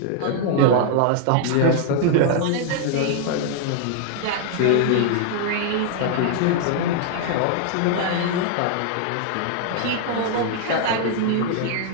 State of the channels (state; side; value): different; both; correlation 0.00